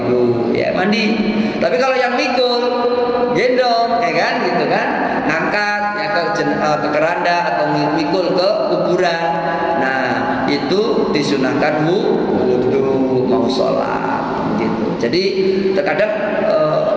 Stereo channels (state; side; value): identical; both; correlation 1.00